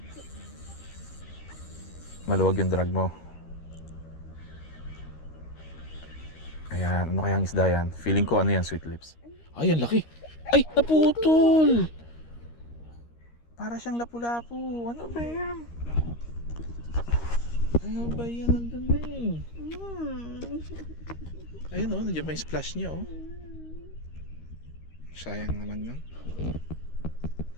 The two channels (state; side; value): late; right; 13 ms